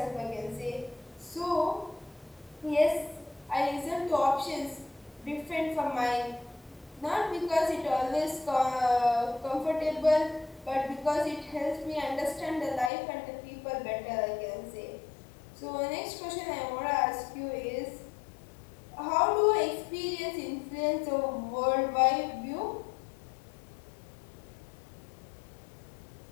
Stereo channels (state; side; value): drops out; right; at 12.9 s